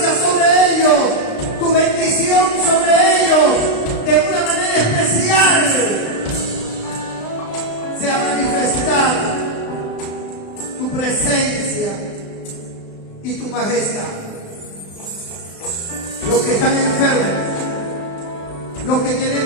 sobre ellos, tu bendición sobre ellos, de una manera especial. Sea manifestada tu presencia y tu majestad. Los que están enfermos, los que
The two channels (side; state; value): right; late; 36 ms